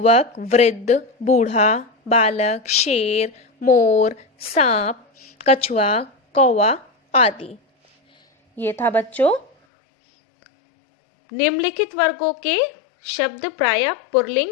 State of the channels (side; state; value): right; drops out; at 9.5 s